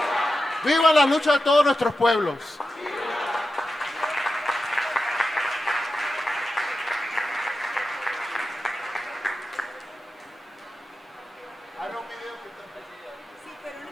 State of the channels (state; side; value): normal; both; correlation 0.91